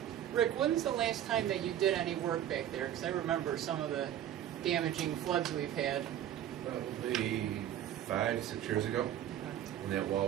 Rick, when's the last time that you did any work back there? Because I remember some of the damaging floods we've had. Probably 5-6 years ago, when that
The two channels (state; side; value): quieter; left; 11.2 dB